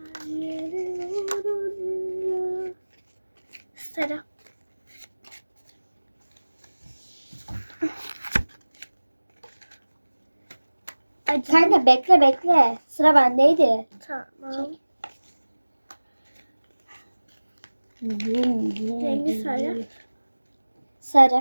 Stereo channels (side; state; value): both; inverted; correlation -1.00